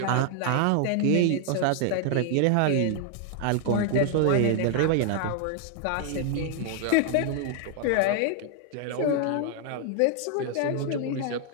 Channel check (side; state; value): both; different; correlation 0.00